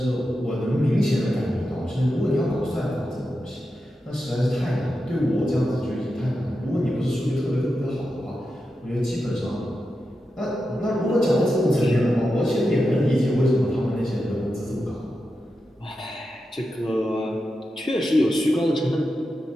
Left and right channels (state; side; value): normal; both; correlation 0.89